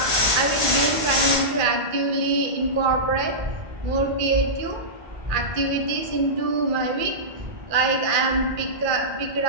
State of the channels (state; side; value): late; left; 2.3 ms